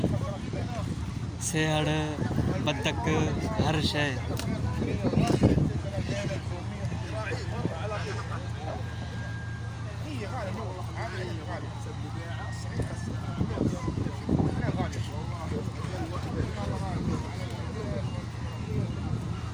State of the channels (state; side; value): identical; both; correlation 1.00